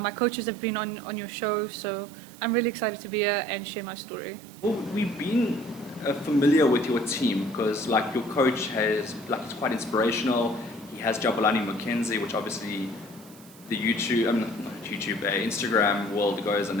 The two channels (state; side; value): noise; right; hiss, 22 dB below the sound